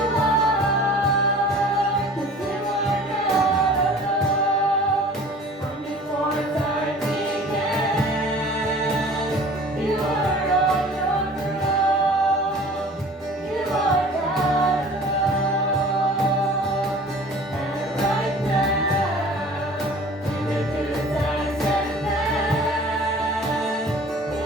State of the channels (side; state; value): both; normal; correlation 0.45